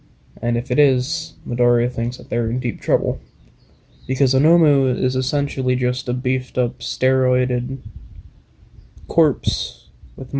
And if it is, Midoriya thinks that they're in deep trouble. Because a Nomu is essentially just a beefed up, steroided corpse with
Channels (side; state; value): both; identical; correlation 1.00